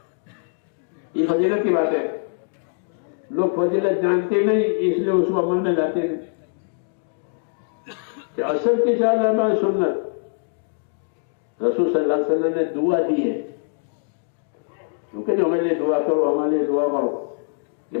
یہ فضیلت کی بات ہے۔ لوگ فضیلت جانتے نہیں، اس لیے اس کو عمل میں لاتے نہیں۔ کہ اصل کی 4 رکعت سنت رسول صلی اللہ علیہ وسلم نے دعا دی ہے، کیونکہ ہمارے لیے دعا کرو، ہمارے لیے دعا کرو، کہ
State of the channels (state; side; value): silent; right; digital silence